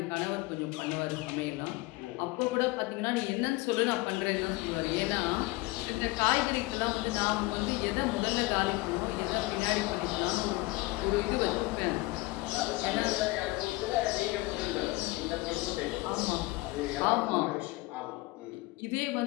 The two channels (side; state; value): right; quieter; 21.4 dB